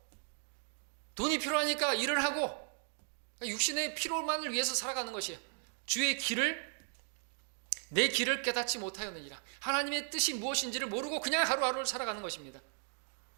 돈이 필요하니까 일을 하고 육신의 필요만을 위해서 살아가는 것이에요. 주의 길을 내 길을 깨닫지 못하였느니라. 하나님의 뜻이 무엇인지를 모르고 그냥 하루하루를 살아가는 것입니다.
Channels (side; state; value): left; silent; 54 dB below the other